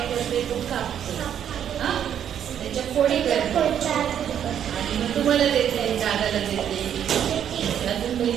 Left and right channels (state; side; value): quieter; left; 9.4 dB